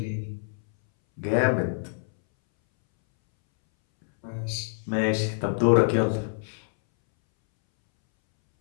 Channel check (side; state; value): right; silent; 61 dB below the other